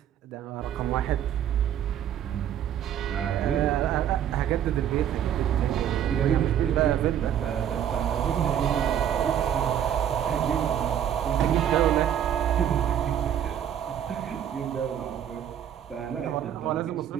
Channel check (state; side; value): quieter; left; 9.9 dB